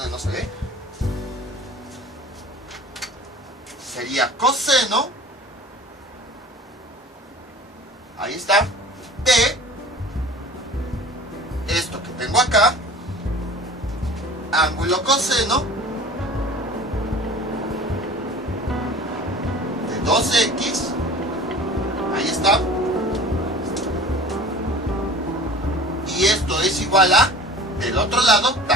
no se ve. Sería coseno, ahí está, de esto que tengo acá, ángulo coseno 2x, ahí está, y esto es igual a, del otro lado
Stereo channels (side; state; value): both; normal; correlation 0.42